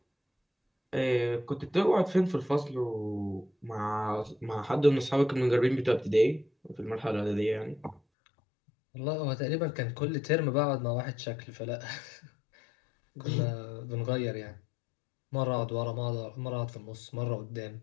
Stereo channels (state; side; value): drops out; right; at 8.0 s